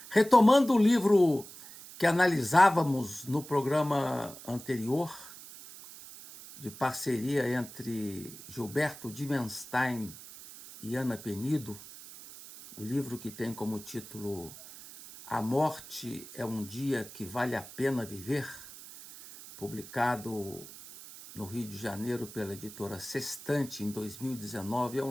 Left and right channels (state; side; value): noise; right; hiss, 16 dB below the sound